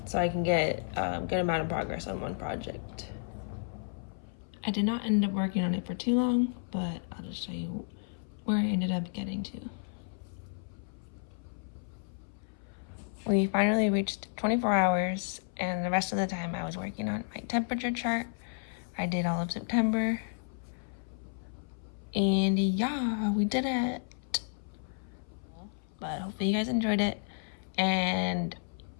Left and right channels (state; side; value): silent; right; 56 dB below the other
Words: So I can get a good amount of progress on one project. I did not end up working on it for too long, but I'll just show you where I ended up getting to. We finally reached 24 hours, and the rest of the time I was working on my temperature chart. I did all of September, and yeah, we did it. But hopefully you guys enjoyed it, and